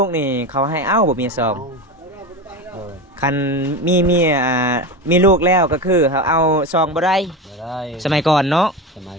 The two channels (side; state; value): both; normal; correlation 0.23